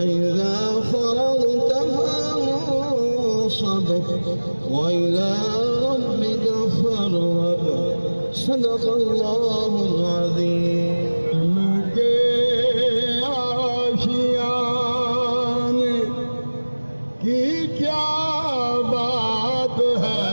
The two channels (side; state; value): both; inverted; correlation -1.00